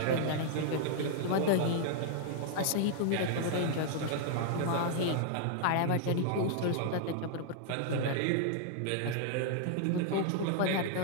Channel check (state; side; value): different; both; correlation -0.01